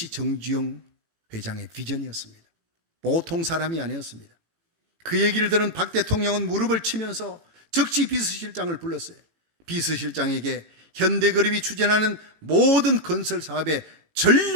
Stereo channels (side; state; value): left; late; 18 ms